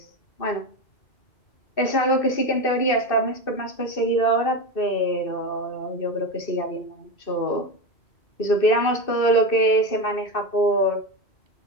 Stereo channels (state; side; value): late; right; 2.6 ms